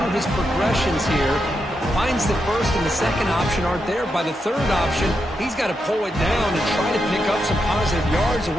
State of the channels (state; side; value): normal; both; correlation 0.84